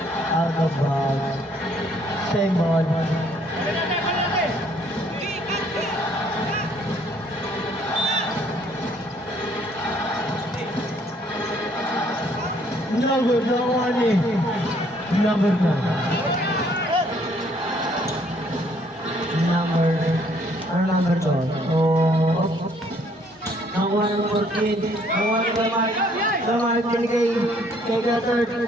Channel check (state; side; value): normal; both; correlation 0.64